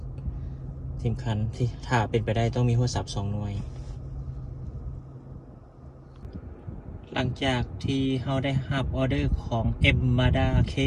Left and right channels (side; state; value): both; identical; correlation 1.00